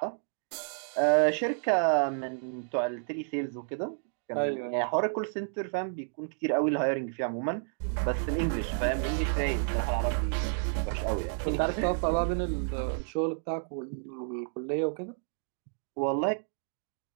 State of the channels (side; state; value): left; silent; digital silence